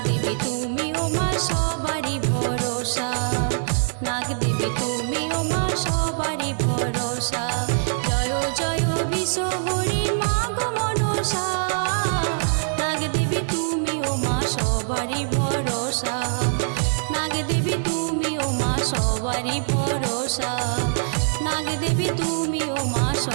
দেবী তুমি ও মা সবারই ভরসা। নাগ দেবী তুমি ও মা সবারই ভরসা। জয় জয় বিশ্বহরি মা গো মনসা, নাগ দেবী তুমি ও মা সবারই ভরসা। নাগ দেবী তুমি ও মা সবারই ভরসা। নাগ দেবী তুমি ও মা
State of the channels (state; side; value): silent; left; digital silence